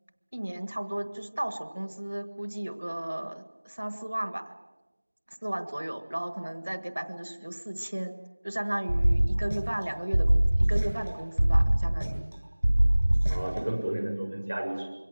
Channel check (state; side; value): inverted; both; correlation -1.00